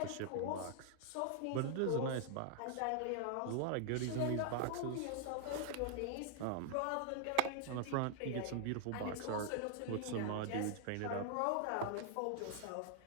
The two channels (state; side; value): different; both; correlation 0.00